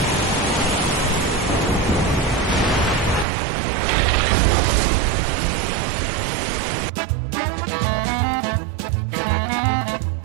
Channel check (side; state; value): left; drops out; at 3.2 s